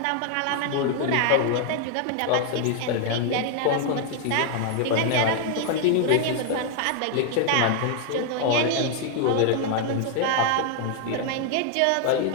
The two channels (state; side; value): different; both; correlation 0.00